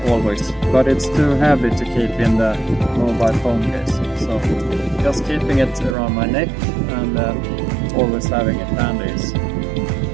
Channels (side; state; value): left; drops out; at 6.0 s